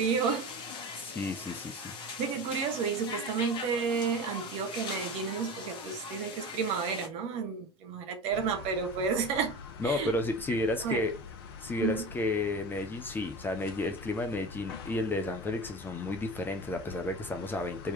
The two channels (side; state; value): both; normal; correlation 0.31